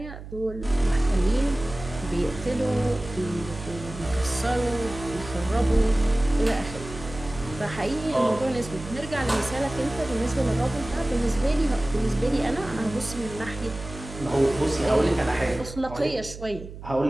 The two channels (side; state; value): right; noise; hum, 13 dB below the sound